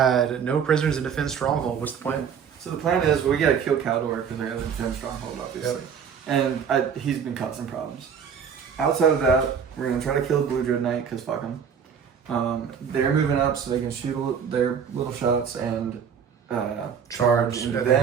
no prisoners in defense stronghold. What's the plan? So the plan is we gotta kill Kaldor because I gotta defend stronghold, obviously. Yep. And he's been causing problems. Outside of that, we're gonna try to kill Blue Dread Knight because fuck him. They're moving up so they can shoot their little shots and charge into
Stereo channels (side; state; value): left; quieter; 7.2 dB